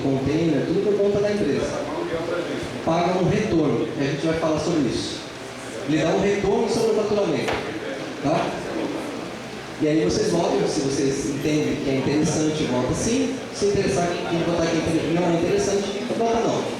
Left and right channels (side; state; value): both; identical; correlation 1.00